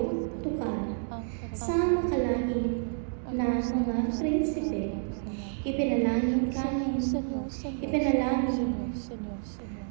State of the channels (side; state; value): left; silent; digital silence